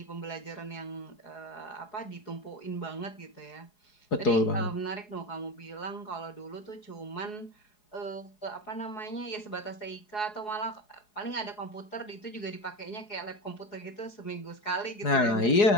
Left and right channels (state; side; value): late; right; 4.8 ms